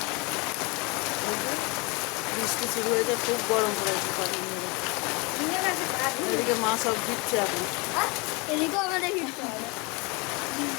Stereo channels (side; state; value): right; quieter; 28.5 dB